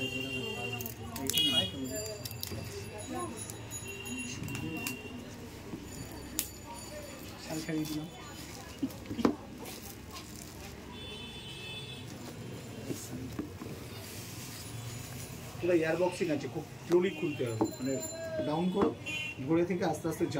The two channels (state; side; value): identical; both; correlation 1.00